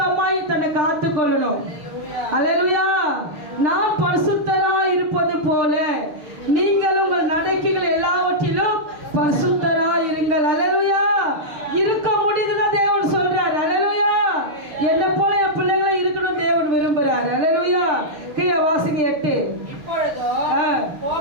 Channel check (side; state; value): left; late; 6.6 ms